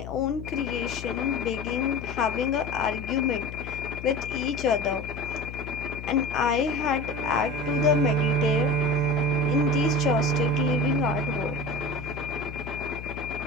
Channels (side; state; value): left; noise; hum, 10 dB below the sound